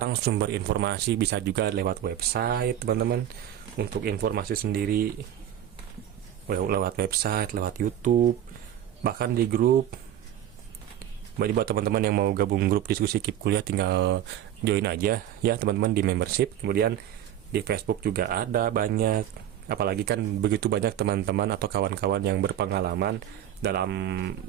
sumber informasi, bisa juga lewat website, teman-teman, untuk informasi sendiri. Lewat website, lewat YouTube, bahkan di grup. Jadi buat teman-teman yang mau gabung grup diskusi KIP kuliah, tinggal join aja ya, teman-teman, di membership. Kemudian di Facebook juga ada banyak. Apalagi kan begitu banyak teman-teman atau kawan-kawan yang berpengalaman dalam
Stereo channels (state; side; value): quieter; left; 11.1 dB